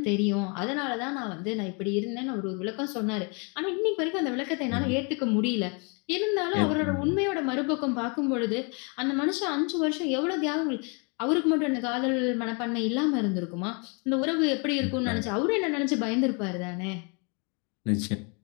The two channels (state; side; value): quieter; right; 34.1 dB